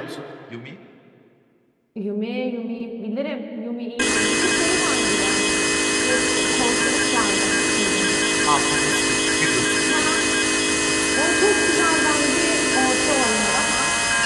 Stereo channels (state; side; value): identical; both; correlation 1.00